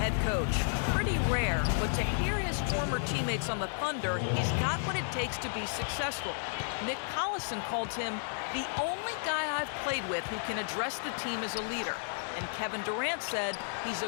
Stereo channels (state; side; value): silent; right; 56 dB below the other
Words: coach. Pretty rare, but to hear his former teammates on the Thunder, he's got what it takes to be successful. Nick Collison called him the only guy I've played with who can address the team as a leader. And Kevin Durant said he's a